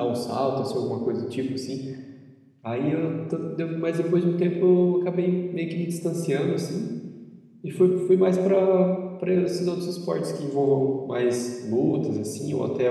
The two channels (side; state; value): both; identical; correlation 1.00